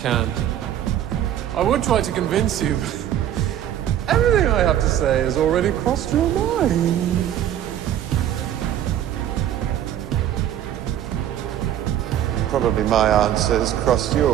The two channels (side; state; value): left; quieter; 11.1 dB